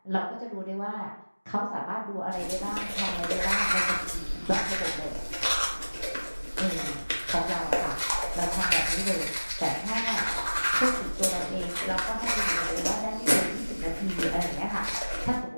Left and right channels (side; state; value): both; inverted; correlation -1.00